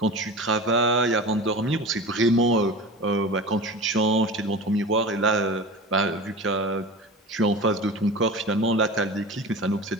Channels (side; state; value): both; normal; correlation 0.32